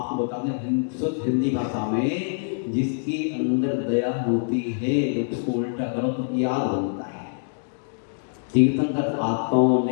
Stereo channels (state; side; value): silent; right; digital silence